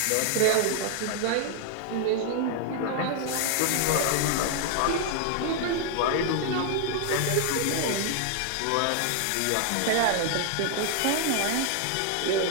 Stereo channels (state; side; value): different; both; correlation 0.00